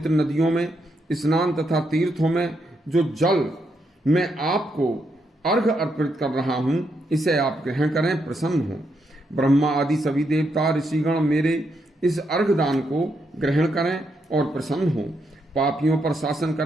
नदियों में स्नान तथा तीर्थों में जो जल मैं आपको अर्घ अर्पित कर रहा हूँ, इसे आप ग्रहण करें, प्रसन्न हो। ब्रह्मा आदि सभी देवता ऋषिगण मेरे इस अर्घ दान को ग्रहण करें और प्रसन्न हो। पापियों पर शासन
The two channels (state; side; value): normal; both; correlation 0.80